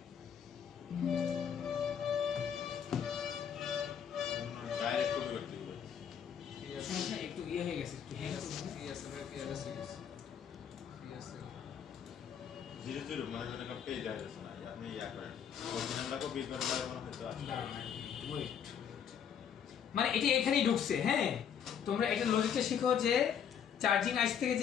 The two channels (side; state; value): right; quieter; 8.1 dB